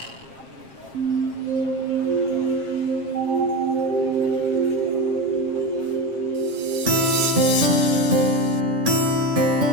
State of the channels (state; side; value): late; left; 7.5 ms